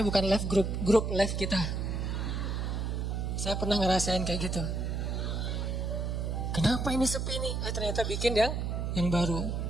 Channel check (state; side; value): noise; right; hum, 1 dB below the sound